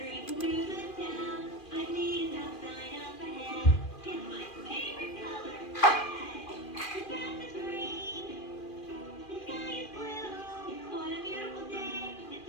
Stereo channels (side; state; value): right; late; 2.4 ms